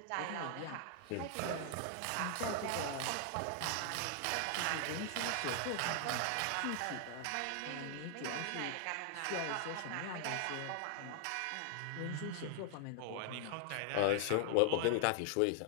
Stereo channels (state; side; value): different; both; correlation 0.00